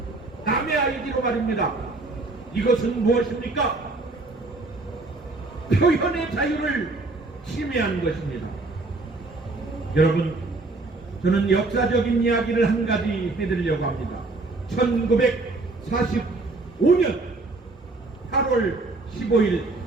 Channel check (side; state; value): left; quieter; 3.3 dB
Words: 남의 아이디로 말입니다. 이것은 무엇입니까? 표현의 자유를 침해한 것입니다. 여러분, 저는 역사적인 이야기를 한 가지 해드리려고 합니다. 1945년 8월 15일